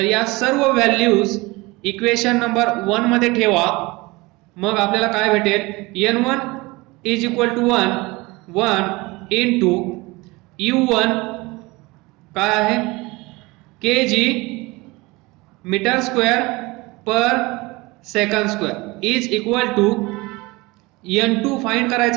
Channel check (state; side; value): quieter; left; 23.1 dB